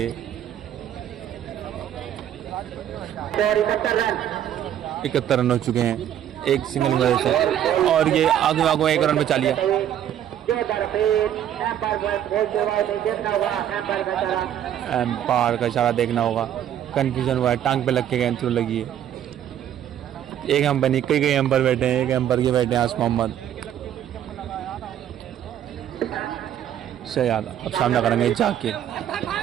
71 रन हो चुके हैं एक सिंगल की वजह से और ये आगे आगो 1 रन बचा लिया। एम्पायर का इशारा देखना होगा, कंफ्यूजन हुआ है, टांग पे लग के गेंद थ्रू लगी है। एक एम्पायर नहीं, कई एम्पायर बैठे हैं, एक एम्पायर के बैठे हैं आस मोहम्मद शहजाद। अब सामना करेंगे जाकिर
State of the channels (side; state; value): left; quieter; 10.6 dB